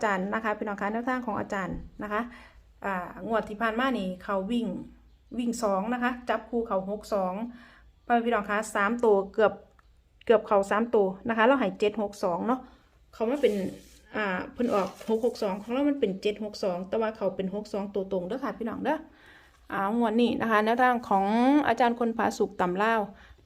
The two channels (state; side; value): identical; both; correlation 1.00